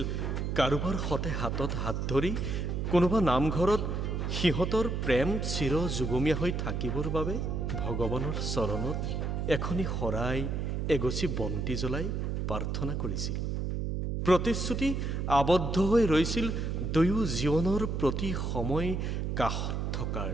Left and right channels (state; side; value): noise; right; hum, 1 dB below the sound